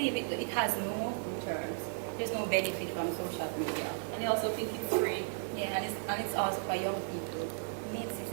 it has no returns. There's no benefit from social media. And they also think it's free. Yeah, and it's also for young people. It's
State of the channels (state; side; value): silent; left; digital silence